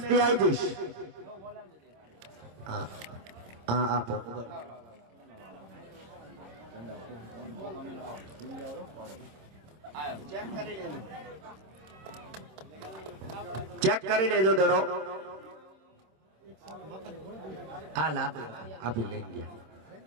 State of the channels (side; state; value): left; late; 26 ms